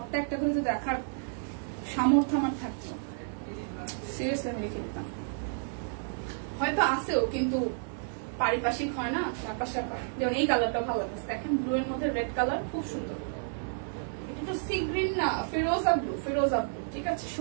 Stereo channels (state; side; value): silent; left; digital silence